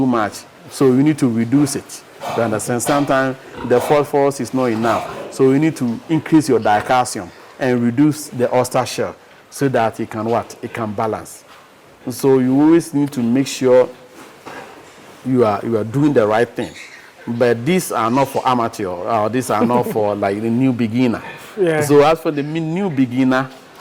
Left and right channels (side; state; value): both; identical; correlation 1.00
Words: much, so you need to reduce it. You understand? Sometimes the phosphorus is not enough, so you need to increase your dicalcium and reduce the oyster shell so that it can It can balance. So you always need to make sure you are doing the right thing. But these are not for amateur, or these are not for like the new beginner. Yeah. So as for the new beginner,